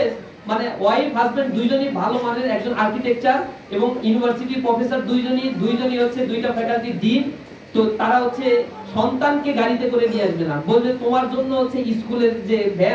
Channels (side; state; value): both; identical; correlation 1.00